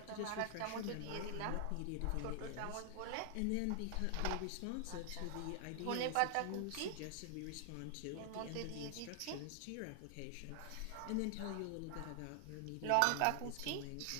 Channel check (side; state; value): both; different; correlation 0.00